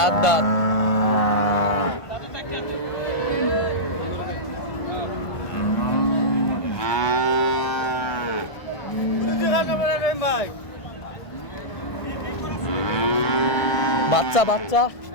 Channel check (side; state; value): right; late; 1.5 ms